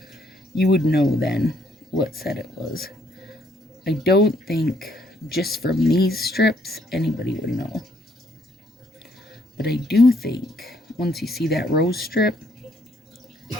you would know then what set it was. I don't think just from these strips, anybody would know. But I do think, once you see that rose strip,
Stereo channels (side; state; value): both; normal; correlation 0.69